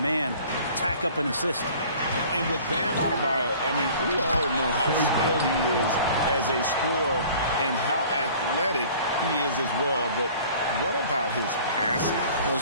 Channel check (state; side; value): inverted; both; correlation -0.48